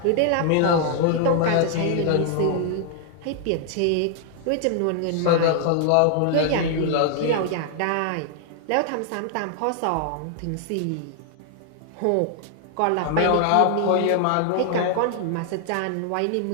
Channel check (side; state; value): both; different; correlation 0.00